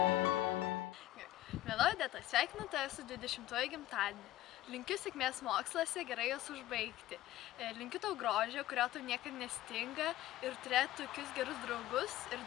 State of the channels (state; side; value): quieter; right; 15.1 dB